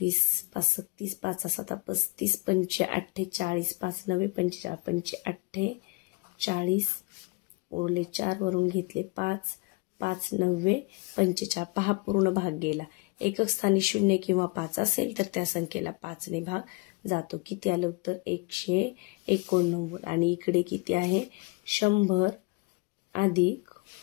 5 36, 5 7 35, 5 8 40, 5 9 45, 5 8 40, उरले 4, वरून घेतले 5, 5 9 45. पहा, पूर्ण भाग गेला. एकक स्थानी 0 किंवा 5 असेल तर त्या संख्येला 5ने भाग जातो. किती आलं उत्तर? 189. आणि इकडे किती आहे? 100 अधिक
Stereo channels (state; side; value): quieter; right; 26.2 dB